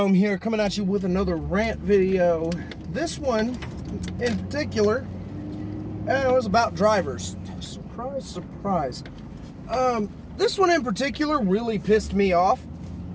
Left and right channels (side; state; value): both; identical; correlation 1.00